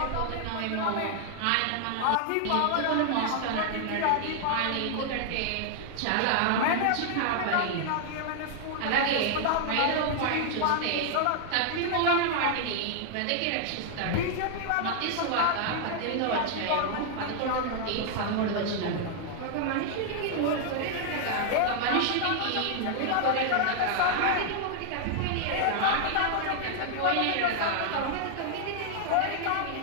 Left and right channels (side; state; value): both; different; correlation 0.00